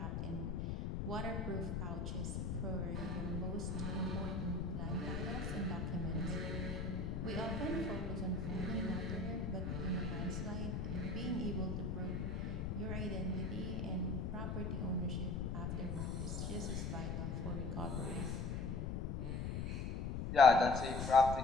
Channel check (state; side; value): noise; left; rumble, 2 dB below the sound